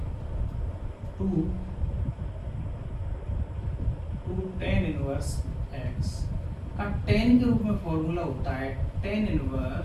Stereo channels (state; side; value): identical; both; correlation 1.00